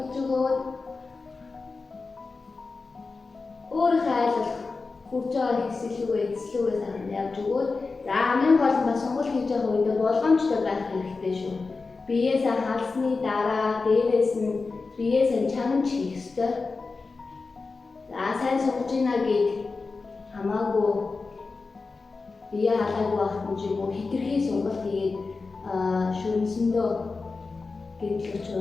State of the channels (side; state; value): right; quieter; 4.1 dB